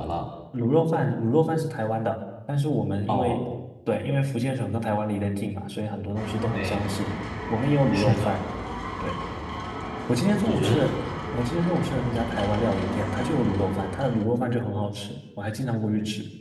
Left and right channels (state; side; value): identical; both; correlation 1.00